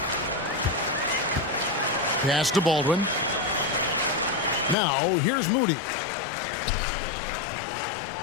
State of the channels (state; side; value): drops out; right; at 4.8 s